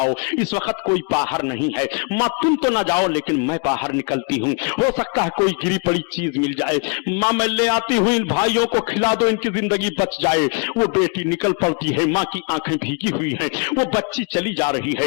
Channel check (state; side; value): quieter; right; 36.1 dB